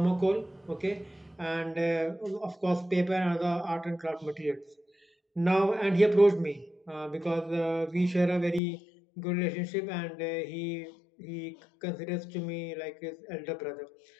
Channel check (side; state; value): right; drops out; at 8.6 s